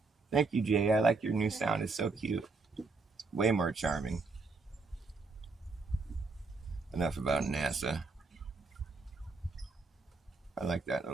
Thank you, Jay. I like your new sound. It's so cute. Way more charming. Enough about NASA. I like that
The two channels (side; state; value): left; quieter; 3.9 dB